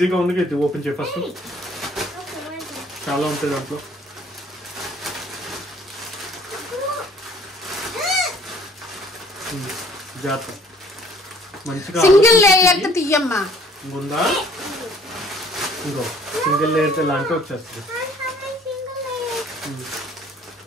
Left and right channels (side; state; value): both; normal; correlation 0.57